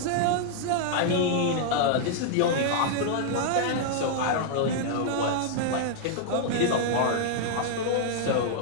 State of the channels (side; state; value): both; different; correlation -0.01